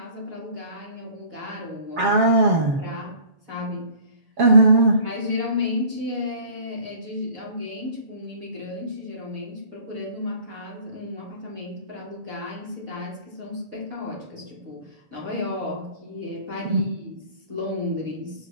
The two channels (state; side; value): late; left; 7.2 ms